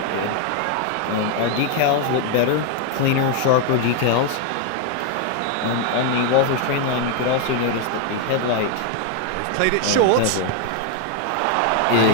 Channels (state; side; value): different; both; correlation 0.01